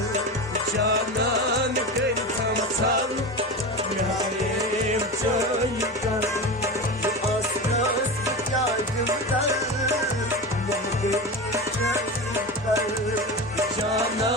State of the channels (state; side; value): normal; both; correlation 0.25